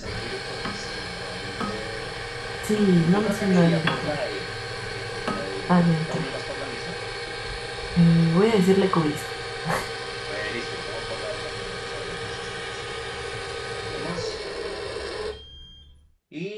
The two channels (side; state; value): both; identical; correlation 1.00